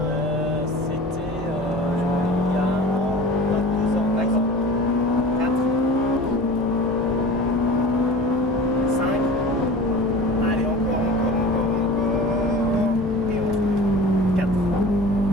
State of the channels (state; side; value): normal; both; correlation 0.38